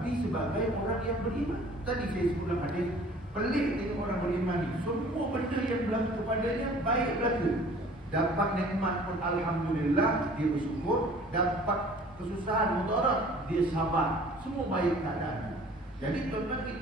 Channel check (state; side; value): normal; both; correlation 0.50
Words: sebagai orang yang beriman. Tadi saya sebut dalam hadis, pelik tengok orang beriman ni, semua benda yang berlaku kepadanya baik berlaku. Dapat nikmat pun alhamdulillah, dia bersyukur. Dapat kesusahan, mudarat, dia sabar. Semua baik keadaan. Jadi tuan-tuan,